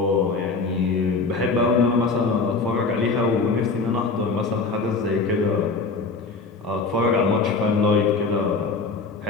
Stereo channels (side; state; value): right; quieter; 4.1 dB